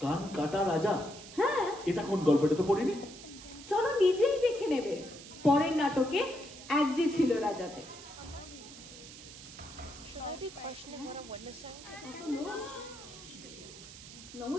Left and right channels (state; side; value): noise; right; hiss, 15 dB below the sound